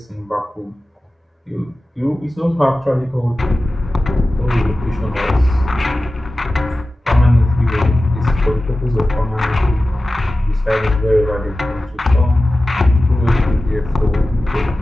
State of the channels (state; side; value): normal; both; correlation 0.95